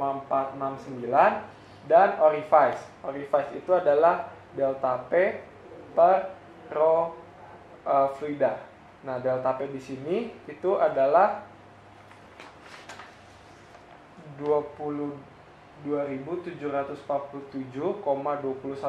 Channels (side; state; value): both; identical; correlation 1.00